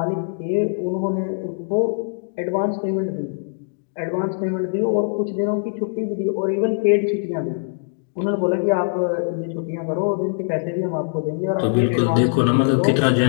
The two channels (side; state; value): right; silent; digital silence